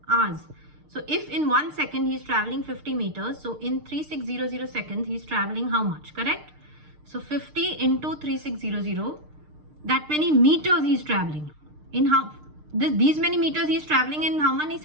Hours. So, if in 1 second he is traveling 50 meters, so in 3600 seconds, he is traveling how much? Correct? So, 50 into 3600, that many meters he is traveling. In how? These many meters he is traveling in how many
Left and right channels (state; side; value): late; left; 6.6 ms